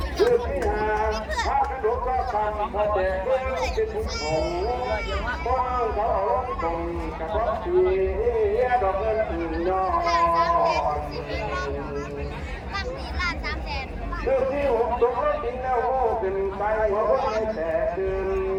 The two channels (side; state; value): both; identical; correlation 1.00